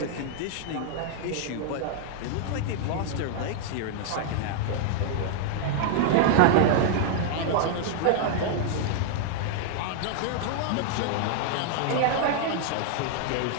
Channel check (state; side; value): different; both; correlation 0.00